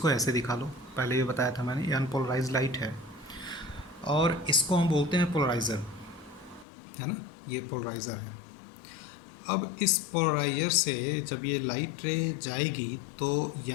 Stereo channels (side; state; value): right; drops out; at 6.7 s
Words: ऐसे दिखा लो। पहले ये बताया था मैंने, ये अनपोलराइज लाइट है और इसको हम बोलते हैं पोलराइज़र, है ना, ये पोलराइज़र है। अब इस पोलराइजर से जब ये लाइट रे जाएगी तो